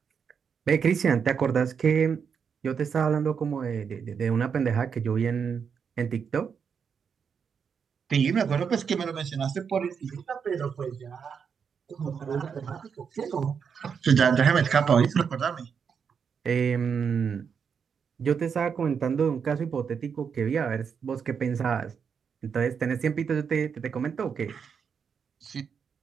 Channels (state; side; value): quieter; left; 6.6 dB